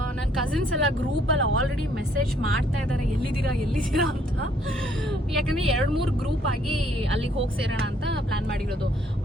ನನ್ನ ಕಸಿನ್ಸ್ ಎಲ್ಲ ಗ್ರೂಪಲ್ಲಿ ಆಲ್ರೆಡಿ ಮೆಸೇಜ್ ಮಾಡ್ತಾ ಇದ್ದಾರೆ, ಎಲ್ಲಿದ್ದೀರಾ ಅಂತ. ಯಾಕಂದ್ರೆ 2-3 ಗ್ರೂಪ್ ಆಗಿ ಅಲ್ಲಿಗೆ ಹೋಗಿ ಸೇರೋಣ ಅಂತ ಪ್ಲಾನ್ ಮಾಡಿರೋದು.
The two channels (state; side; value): normal; both; correlation 0.66